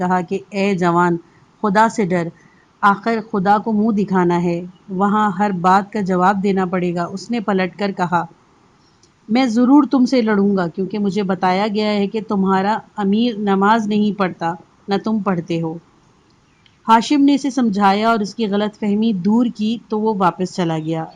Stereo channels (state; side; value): identical; both; correlation 1.00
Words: کہ اے جوان، خدا سے ڈر، آخر خدا کو منہ دکھانا ہے، وہاں ہر بات کا جواب دینا پڑے گا۔ اس نے پلٹ کر کہا: میں ضرور تم سے لڑوں گا، کیونکہ مجھے بتایا گیا ہے کہ تمہارا امیر نماز نہیں پڑھتا، نہ تم پڑھتے ہو۔ ہاشم نے اسے سمجھایا اور اس کی غلط فہمی دور کی تو وہ واپس چلا گیا۔